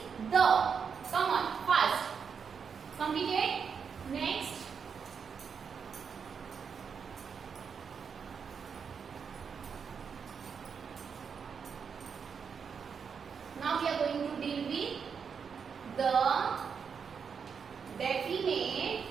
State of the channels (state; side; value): quieter; left; 6.4 dB